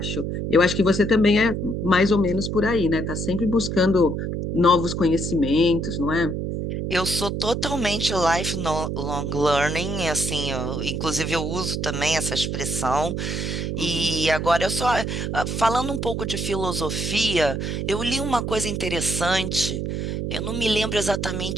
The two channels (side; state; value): right; noise; hum, 2 dB below the sound